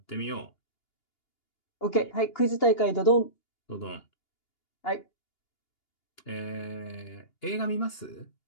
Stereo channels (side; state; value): right; late; 2.8 ms